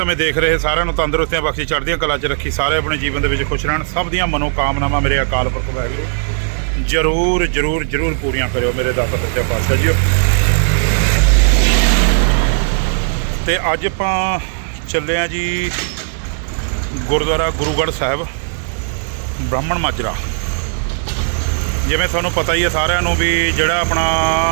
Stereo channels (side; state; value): left; silent; digital silence